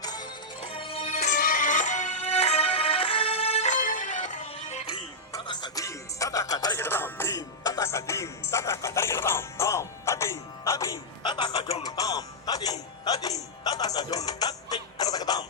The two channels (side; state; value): both; normal; correlation -0.08